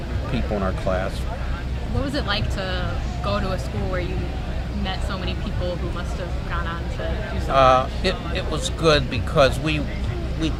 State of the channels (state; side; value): identical; both; correlation 1.00